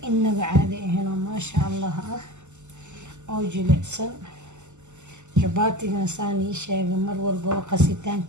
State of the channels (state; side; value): late; left; 0.84 ms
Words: inaba caadi ahaynoo maasha allah ah oo jilicsan. jabaatigana saan ii sheegay mar walbaba